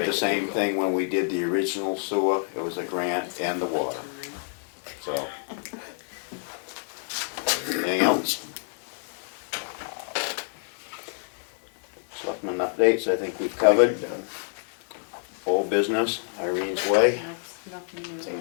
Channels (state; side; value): silent; right; digital silence